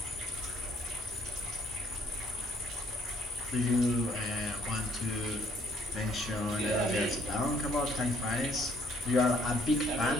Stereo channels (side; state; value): both; normal; correlation 0.65